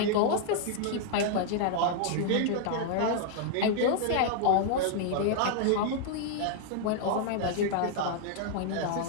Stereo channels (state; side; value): different; both; correlation -0.01